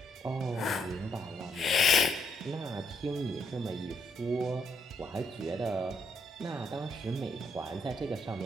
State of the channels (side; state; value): both; normal; correlation 0.74